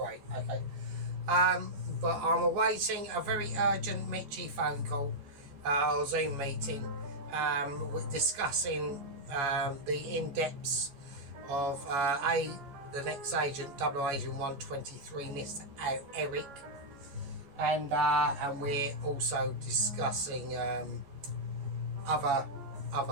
Okay. But I'm awaiting a very urgent Mitchie phone call or Zoom meeting discussing the in-depths of the next agent, Double Agent 123, Mr. Eric, and we're also discussing other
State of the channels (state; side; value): late; left; 13 ms